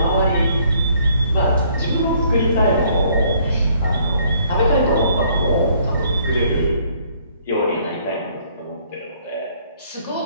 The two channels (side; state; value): both; inverted; correlation -0.63